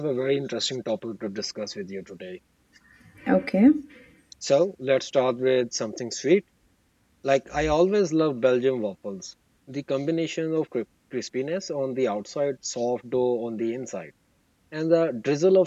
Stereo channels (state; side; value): identical; both; correlation 1.00